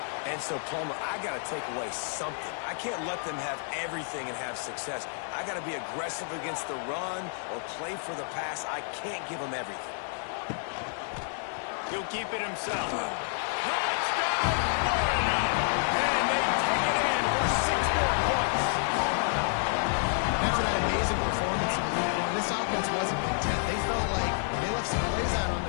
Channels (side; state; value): right; silent; 58 dB below the other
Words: And so, Plummer, I got to take away something. I can't let them have everything and have success. I got to be aggressive against the run or play for the pass. I can't give them everything. He'll keep it himself. Touchdown, Florida! And they take it in for 6 more points. After that amazing performance in Week 1, this offense wasn't content. They felt like they left some plays out on